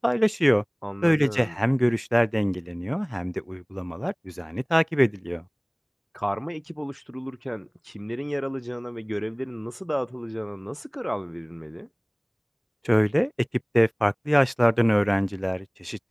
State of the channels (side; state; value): both; identical; correlation 1.00